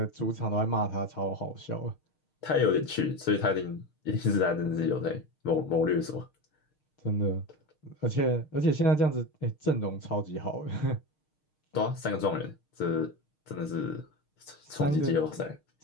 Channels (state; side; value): late; right; 6.5 ms